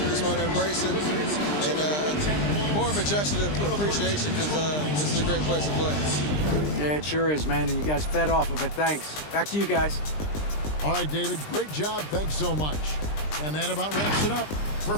want to embrace it. And more of a gesture of appreciation because this is a great place to play. Yeah, it sure is, man. And you guys fed off of it. Thanks. Back to you guys. All right, David. Great job. Thanks so much. And that about wraps it up. For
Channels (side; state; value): right; late; 20 ms